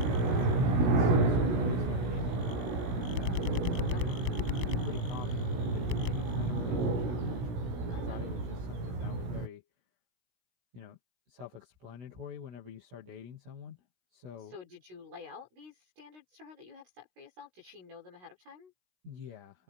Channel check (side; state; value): left; late; 16 ms